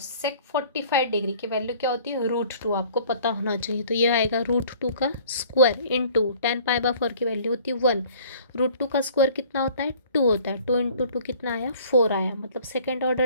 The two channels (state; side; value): inverted; both; correlation -0.52